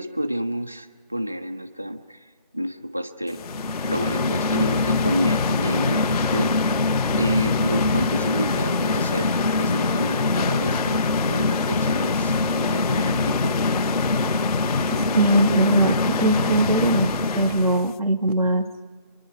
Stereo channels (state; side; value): inverted; both; correlation -0.56